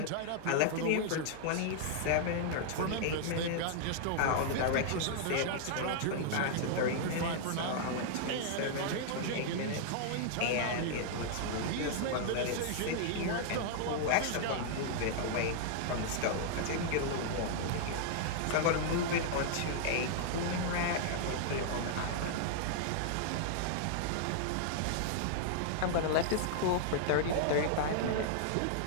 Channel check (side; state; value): both; different; correlation -0.01